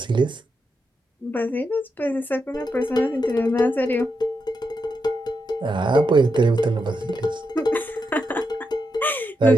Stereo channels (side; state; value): both; normal; correlation 0.84